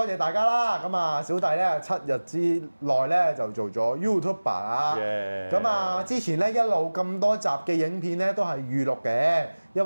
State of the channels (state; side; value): inverted; both; correlation -1.00